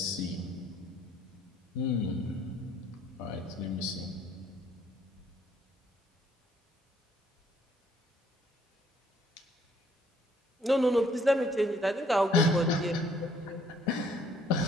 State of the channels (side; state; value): both; normal; correlation 0.64